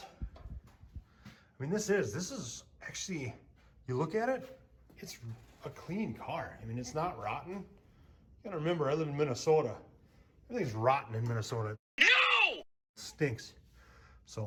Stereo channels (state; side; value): identical; both; correlation 1.00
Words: I mean, this is actually, you look at it, it's a clean car. I mean, it's not rotten. You gotta remember, I live in Minnesota. Everything's rotten in Minnesota. No! It stinks.